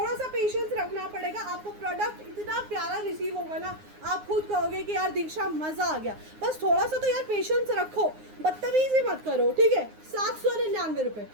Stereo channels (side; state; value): left; late; 9.6 ms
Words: सा पेशेंस रखना पड़ेगा। आपको प्रोडक्ट इतना प्यारा रिसीव होगा ना, आप खुद कहोगे कि यार दीक्षा मज़ा आ गया। बस थोड़ा सा तो यार पेशेंस रखो, बदतमीजी मत करो, ठीक है। 799 रुपये,